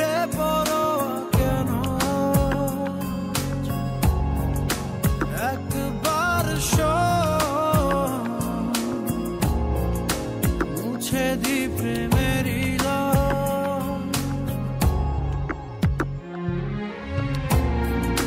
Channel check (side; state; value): both; identical; correlation 1.00